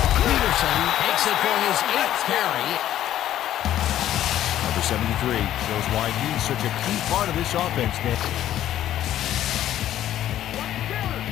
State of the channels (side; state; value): right; quieter; 12.2 dB